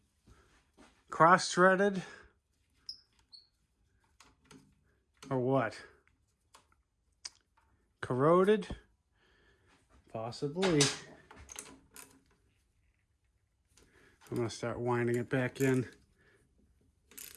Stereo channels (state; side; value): identical; both; correlation 1.00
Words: Cross-threaded? Or what? Corroded? Possibly. I'm going to start winding it back in.